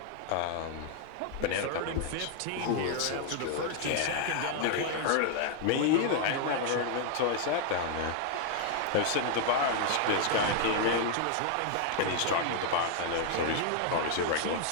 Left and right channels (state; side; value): different; both; correlation 0.00